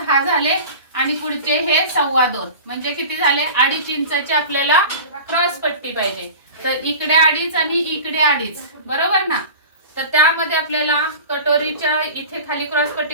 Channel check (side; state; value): both; inverted; correlation -0.36